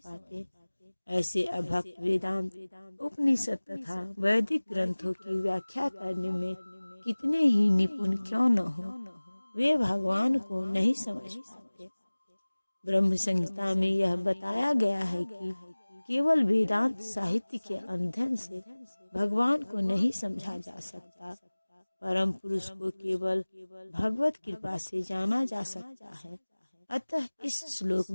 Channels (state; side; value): inverted; both; correlation -1.00